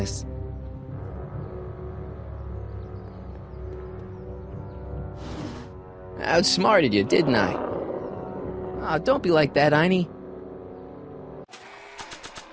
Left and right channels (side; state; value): both; identical; correlation 1.00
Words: I outsmarted you, didn't I? Oh, don't be like that, Einie.